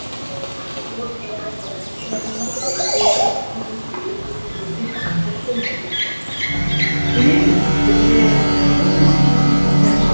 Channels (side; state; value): both; inverted; correlation -1.00